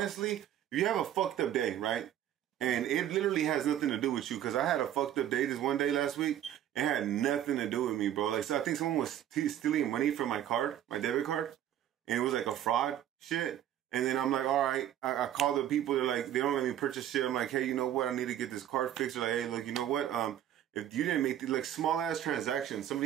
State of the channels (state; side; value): quieter; left; 11.2 dB